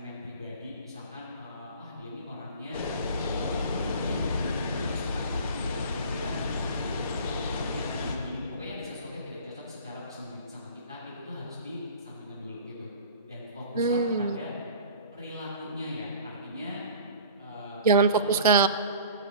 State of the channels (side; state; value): both; inverted; correlation -0.42